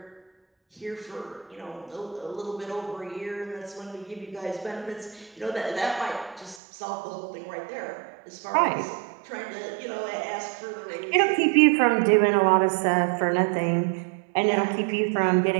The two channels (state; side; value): drops out; left; at 6.6 s